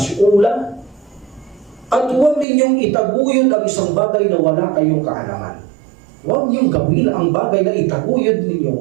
At huwag ninyong itaguyod ang isang bagay na wala kayong kaalaman. Huwag niyong gawin ang bagay na itaguyod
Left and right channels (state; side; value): drops out; left; at 2.5 s